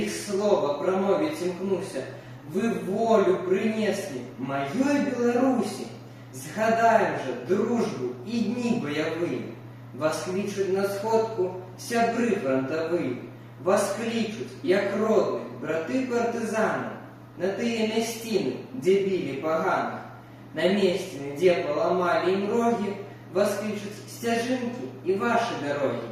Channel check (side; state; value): both; identical; correlation 1.00